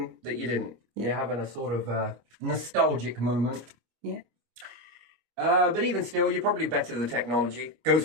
that you didn't. You're having a sort of nostalgic moment. Yeah. But even still, you're probably better the technology. Goes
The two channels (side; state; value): left; late; 25 ms